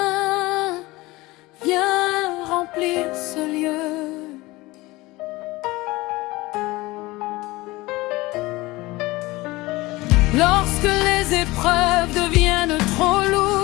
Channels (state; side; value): quieter; right; 20.8 dB